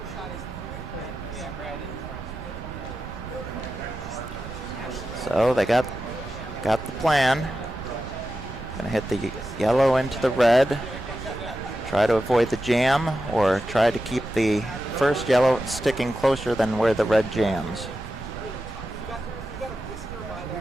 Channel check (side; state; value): right; noise; rumble, 13 dB below the sound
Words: So they got the plan. Gonna hit the yellow into the red. Try to avoid the jam, or try to keep the first yellow sticking closer than where the red jams.